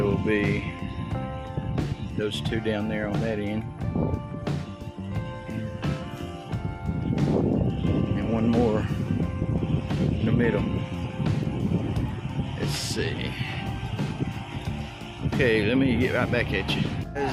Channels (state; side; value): identical; both; correlation 1.00